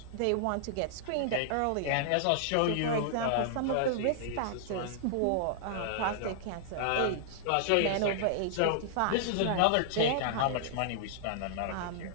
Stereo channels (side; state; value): both; different; correlation -0.01